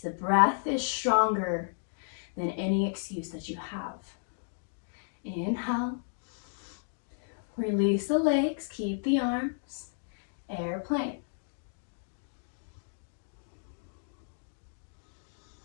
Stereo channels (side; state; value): right; silent; digital silence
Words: breath is stronger than any excuse that you have. Inhale. Release the legs. Keep the arms. Airplane.